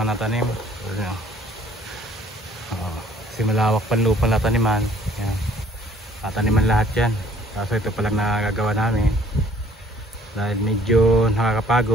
natanim. Kasi malawak pang lupa na taniman. Ayan. Tataniman lahat yan. Kaso ito palang nagagawa namin dahil medyo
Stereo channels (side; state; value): both; normal; correlation 0.58